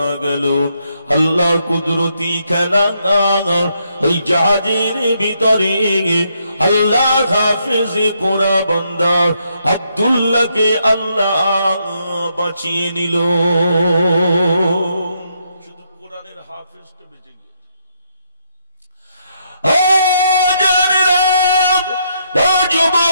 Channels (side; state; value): both; inverted; correlation -0.76